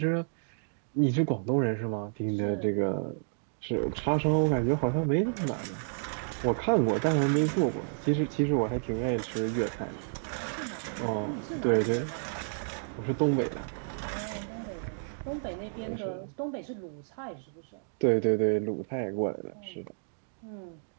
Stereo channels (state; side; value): silent; left; digital silence